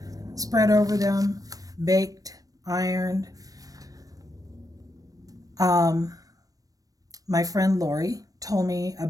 spread over them, baked, ironed. My friend Lori told me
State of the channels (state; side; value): late; left; 0.18 ms